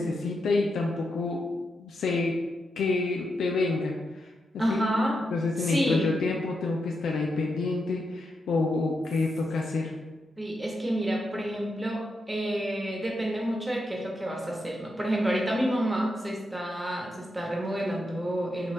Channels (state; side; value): normal; both; correlation 0.84